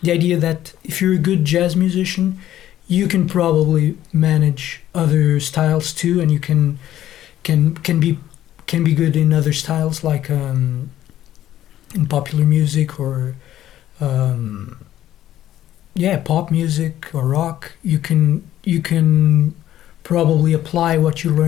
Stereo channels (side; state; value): right; quieter; 12.6 dB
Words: the idea that if you're a good jazz musician, you can probably manage other styles too, and you can be good in other styles, like in popular music or pop music or rock. You can probably apply what you